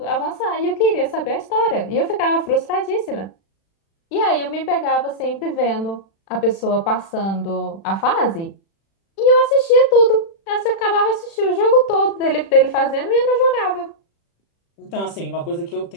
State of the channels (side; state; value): right; late; 36 ms